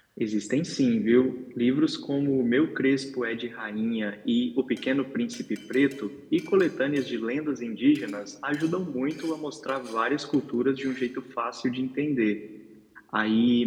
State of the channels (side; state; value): both; identical; correlation 1.00